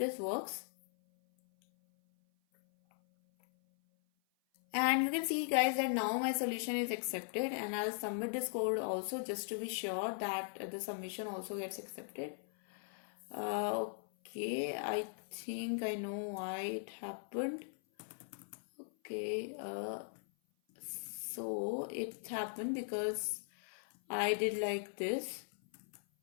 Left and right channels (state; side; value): silent; right; 52 dB below the other